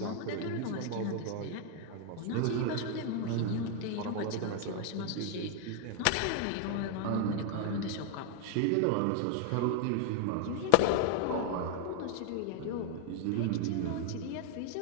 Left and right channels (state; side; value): different; both; correlation 0.00